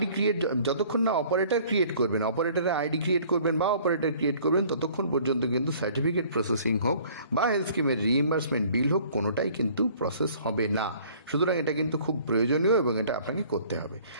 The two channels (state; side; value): inverted; both; correlation -0.54